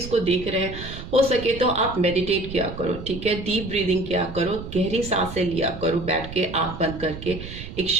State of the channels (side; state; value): right; noise; rumble, 11 dB below the sound